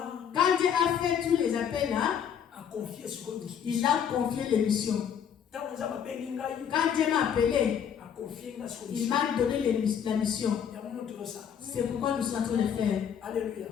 Quand Dieu a fait tous les appels là, il a confié les missions. Quand Dieu m'a appelé, il m'a donné la mission. C'est pourquoi nous sommes en train de faire. Alléluia.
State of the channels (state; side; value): quieter; right; 8.2 dB